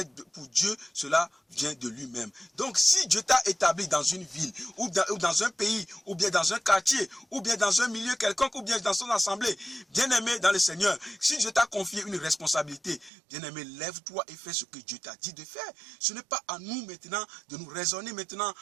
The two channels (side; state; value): left; drops out; at 13.1 s